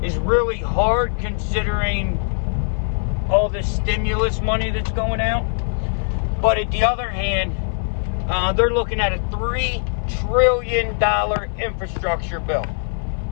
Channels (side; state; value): right; silent; 59 dB below the other